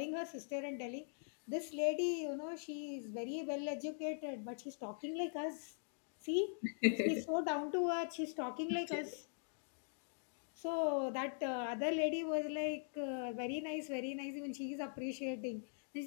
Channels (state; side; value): silent; right; digital silence